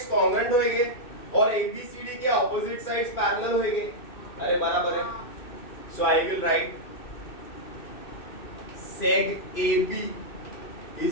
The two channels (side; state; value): right; late; 2.6 ms